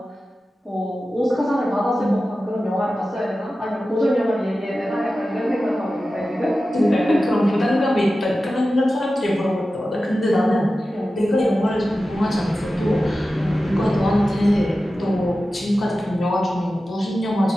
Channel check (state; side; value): normal; both; correlation 0.94